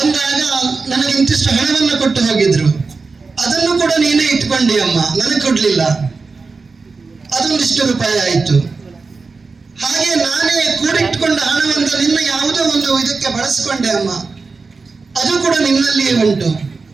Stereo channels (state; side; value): quieter; left; 4.3 dB